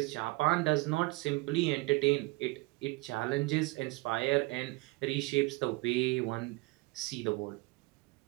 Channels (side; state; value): left; quieter; 23.4 dB